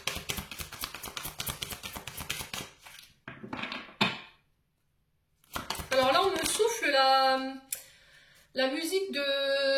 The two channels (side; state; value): both; identical; correlation 1.00